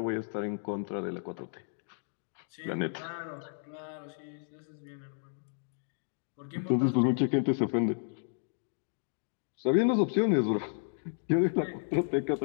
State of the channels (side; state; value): right; silent; digital silence